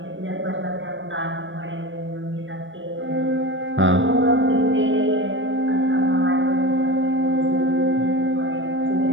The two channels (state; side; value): late; left; 0.56 ms